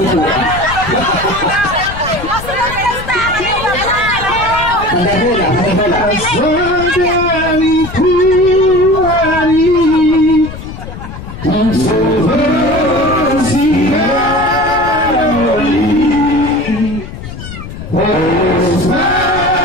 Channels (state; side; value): noise; left; rumble, 11 dB below the sound